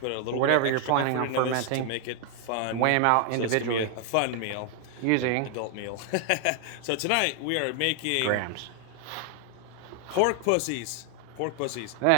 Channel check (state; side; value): different; both; correlation 0.00